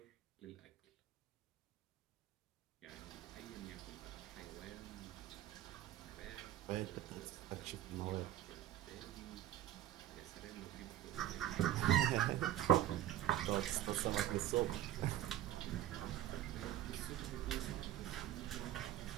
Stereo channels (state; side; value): quieter; left; 12.5 dB